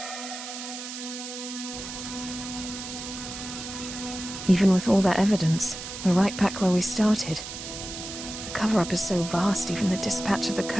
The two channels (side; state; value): right; noise; hiss, 9 dB below the sound